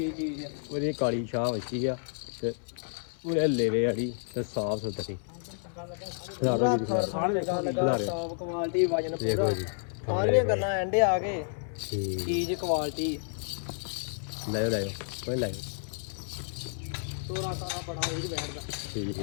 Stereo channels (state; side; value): silent; right; 58 dB below the other